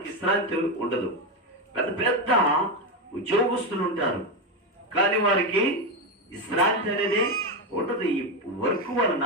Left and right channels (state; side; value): normal; both; correlation 0.10